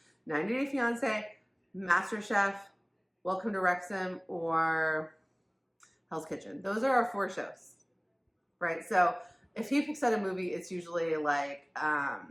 90 Day Fiance, MasterChef, Welcome to Wrexham, or Hell's Kitchen. Those are our 4 shows, right? So if he picks out a movie, it's usually like a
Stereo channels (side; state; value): both; identical; correlation 1.00